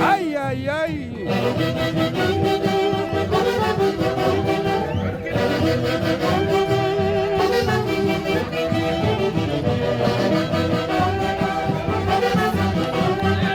¡Ay, ay, ay!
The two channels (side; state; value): both; identical; correlation 1.00